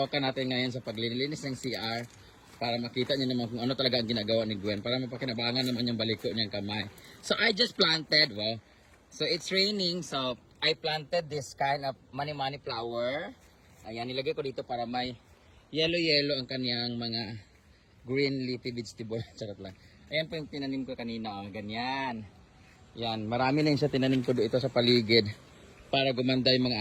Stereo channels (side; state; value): both; identical; correlation 1.00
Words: natin ngayon sa paglilinis ng CR para makita niyo naman kung ano talaga ang ginagawa ni Gwen para mapakinabangan naman yung baliko niyang kamay. So I just planted, wow. So it's raining, so I planted this kind of mani-mani flower. Ayan, nilagay ko dito para may yellow-yellow ang kaniyang mga green leafy vegetable. Charot lang. Ayan po yung tinanim ko kanina, oh, ganyan. Yan, marami na yung siya tinanim ko dito sa paligid para gumanda yung mga